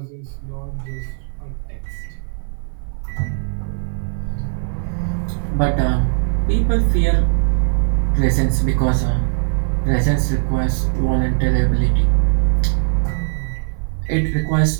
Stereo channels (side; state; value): left; silent; 59 dB below the other